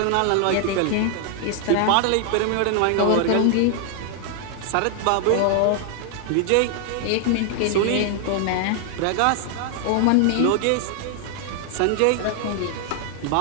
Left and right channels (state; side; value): different; both; correlation 0.00